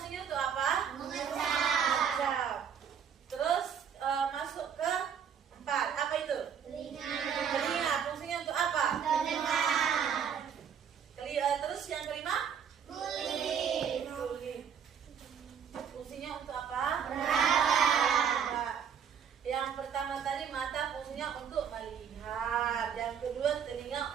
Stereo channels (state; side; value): quieter; left; 7.7 dB